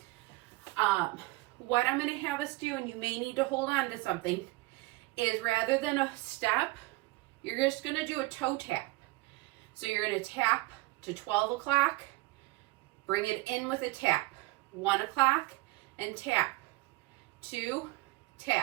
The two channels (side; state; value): left; quieter; 21.1 dB